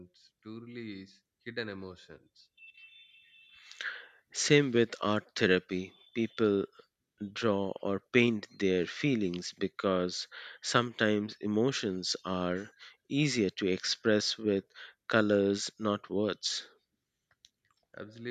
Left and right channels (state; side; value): identical; both; correlation 1.00